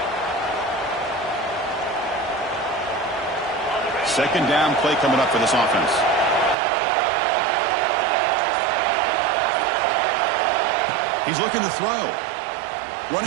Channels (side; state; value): left; drops out; at 6.6 s